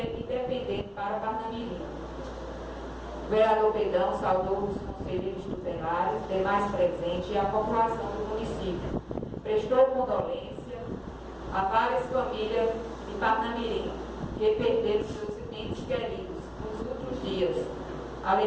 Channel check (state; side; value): identical; both; correlation 1.00